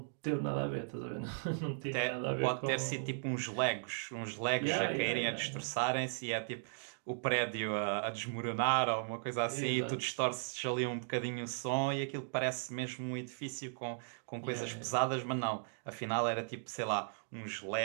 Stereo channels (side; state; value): left; silent; digital silence